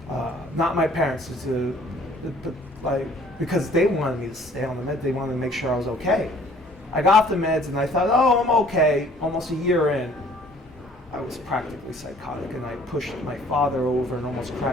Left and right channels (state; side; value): normal; both; correlation 0.56